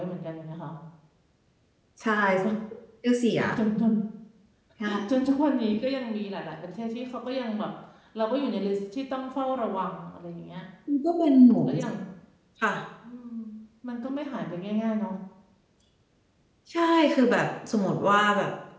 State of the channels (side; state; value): both; identical; correlation 1.00